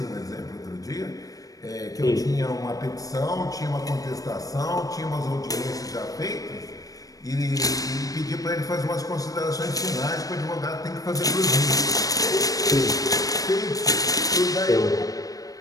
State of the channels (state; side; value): late; right; 0.17 ms